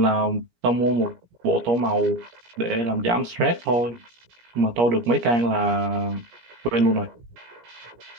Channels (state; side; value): late; left; 17 ms